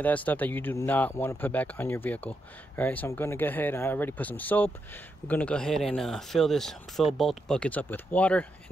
that stuff that you do not want to put back on your vehicle. All right, so I'm going to go ahead, I already put some soap. We're going to go ahead and fill both buckets up with water,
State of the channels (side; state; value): both; normal; correlation 0.83